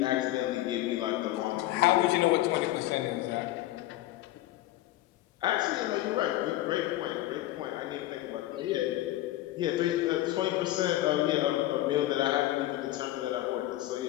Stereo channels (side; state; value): right; quieter; 15.4 dB